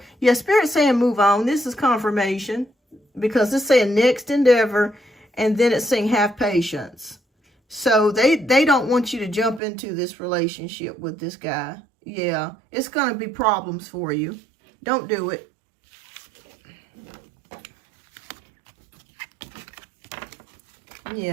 Yeah, Spirit's saying move on. This is confirmation because it's saying next endeavor, and then it's saying have patience. So they don't want you to jump into this relationship with this guy. Yeah, it's going to be problems for you. Don't do it.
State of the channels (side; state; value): left; drops out; at 9.6 s